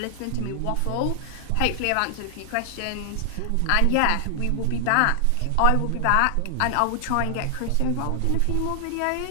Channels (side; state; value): both; different; correlation 0.00